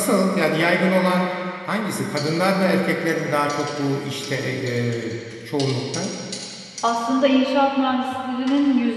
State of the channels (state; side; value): identical; both; correlation 1.00